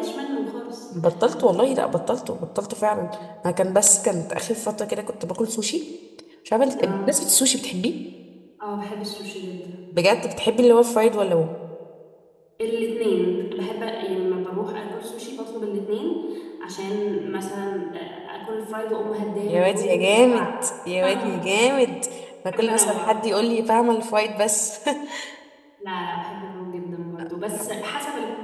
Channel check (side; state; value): both; identical; correlation 1.00